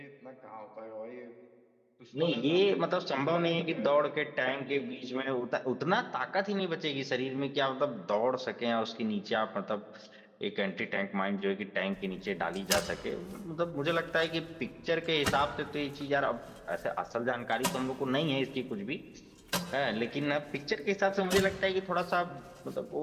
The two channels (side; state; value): both; identical; correlation 1.00